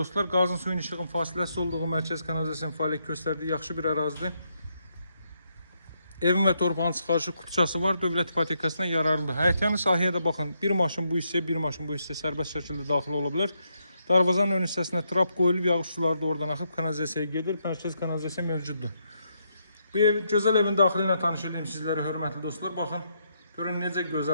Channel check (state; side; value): inverted; both; correlation -0.78